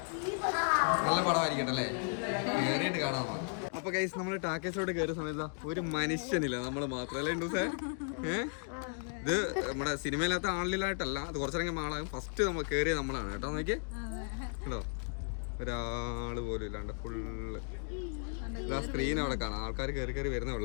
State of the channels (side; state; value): right; silent; 54 dB below the other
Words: നല്ല പടമായിരിക്കട്ടെ അല്ലേ, കയറിയിട്ട് കാണാം നമുക്ക്. അപ്പൊ ഗൈസ് നമ്മൾ ടാക്കേഷോട് കയറിയ സമയത്ത് ഒരു മനുഷ്യനില്ല, നമ്മൾ മാത്രമല്ലേ ഇണ്ടൂസേ. ഇത് നമ്മുടെ സിനിമയിലത്തെ ആളിലായിട്ടല്ല, അത് കുറച്ചിറങ്ങി ആളാകും. ഫസ്റ്റ് നമ്മൾ കയറിയ നമ്മളാണ് കേട്ടോ. നോക്കിയേ കേട്ടോ, ഒരാള് പോലും ഇല്ലാണ്ട് ഫുള്ള് ഇതാ സ്ക്രീൻ അവിടെ കാണാം. ആൾക്കാർ കയറി വരുന്നേ ഉള്ളു